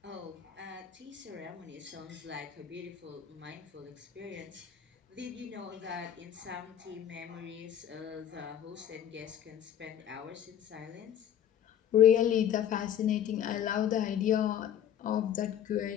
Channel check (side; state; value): right; quieter; 9.9 dB